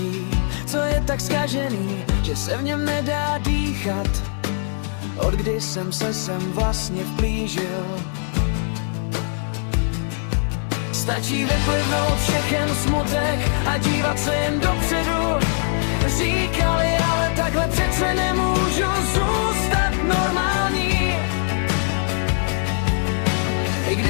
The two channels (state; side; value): silent; right; 64 dB below the other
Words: co je tak zkažený, že se v něm nedá dýchat. Od kdy jsem se sem vlastně vplížil. Stačí vyplivnout všechen smutek a dívat se jen dopředu. Říkali, ale takhle přece nemůžu zůstat normální. I